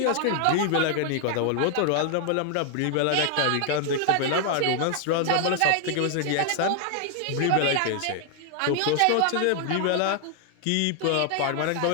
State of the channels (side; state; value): both; different; correlation 0.00